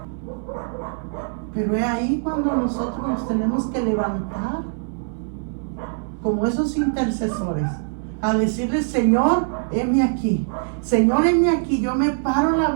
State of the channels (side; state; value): left; silent; 61 dB below the other